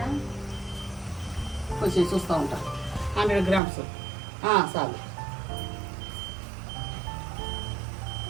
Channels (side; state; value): left; drops out; at 3.6 s